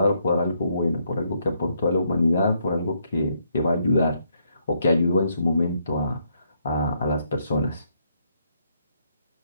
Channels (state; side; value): inverted; both; correlation -0.75